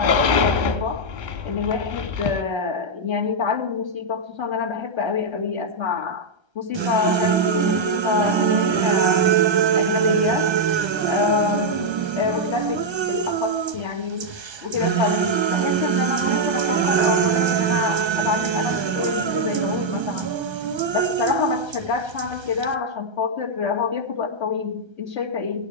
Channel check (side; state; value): left; late; 1.3 ms